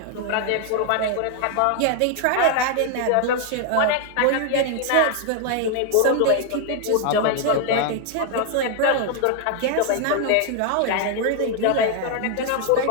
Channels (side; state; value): both; different; correlation 0.00